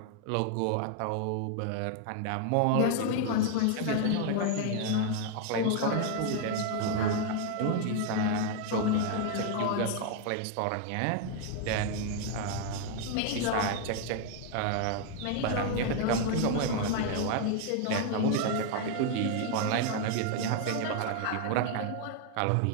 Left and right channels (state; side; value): different; both; correlation 0.00